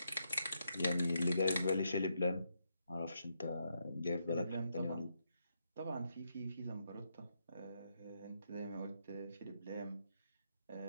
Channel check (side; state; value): both; inverted; correlation -0.79